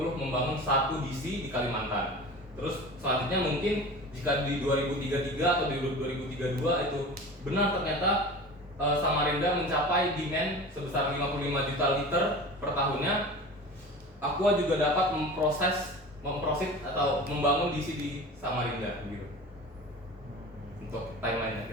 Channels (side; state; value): both; normal; correlation 0.35